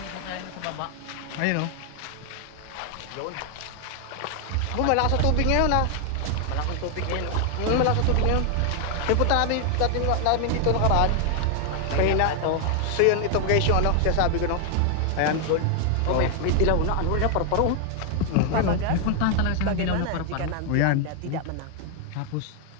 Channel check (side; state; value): both; different; correlation 0.00